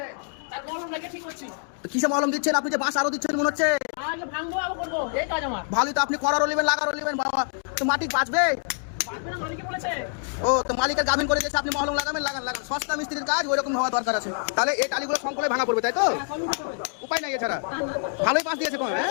কিসে মলম দিচ্ছেন আপনি? যে বাঁশ আরো দিচ্ছেন মনে হচ্ছে। ভালোই তো, আপনি করারও নেবেন লাগারও নেবেন বাবা, তো মাটি বাঁচবে। ও তো মালিকের গাভিন করে দিয়েছে, আপনি মহলম লাগাবেন, লাগান লাগান, সস্তা মিস্ত্রির কাজ ওই রকম হওয়া দরকার আছে। তাহলে এই টালিগুলো সংকলে ভাঙা পড়বে, তাই তো? উপায় নাই এছাড়া। ভালোই বাঁশ দিয়েছে কোন, হ্যাঁ?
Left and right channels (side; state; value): right; silent; 61 dB below the other